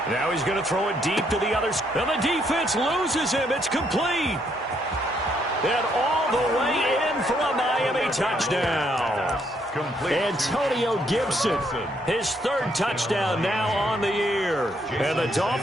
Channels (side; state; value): both; normal; correlation 0.72